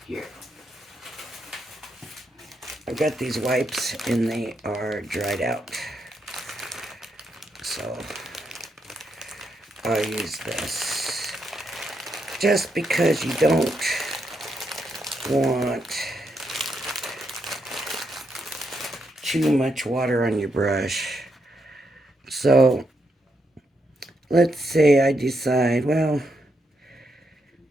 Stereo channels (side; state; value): both; normal; correlation 0.81